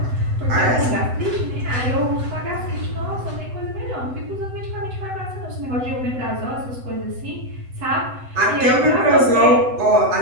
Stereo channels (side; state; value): left; late; 7.9 ms